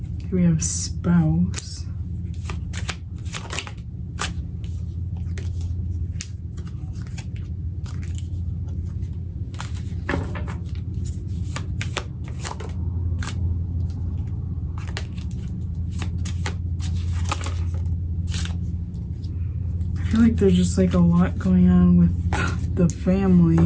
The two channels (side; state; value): both; identical; correlation 1.00